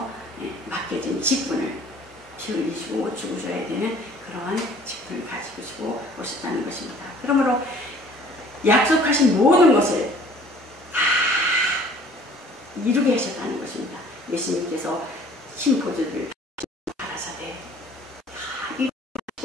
맡겨진 직분을 피 흘리시고 죽으셔야 되는 그러한 직분을 가지고 오셨다는 것입니다. 그러므로 약속하신 모든 것을 다 이루게 하셨다는 것입니다. 예수님께서 신포도를 가라사대 다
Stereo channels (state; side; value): normal; both; correlation 0.53